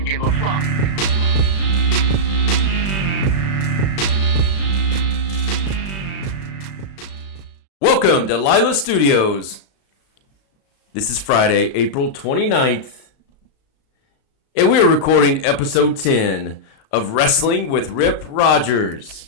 give a fuck. Welcome to Lilas Studios. This is Friday, April 29th, and we are recording episode 10 of Wrestling with Rip Rogers.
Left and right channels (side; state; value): right; late; 36 ms